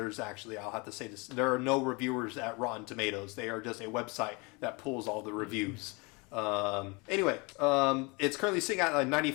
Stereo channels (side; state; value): right; quieter; 28.5 dB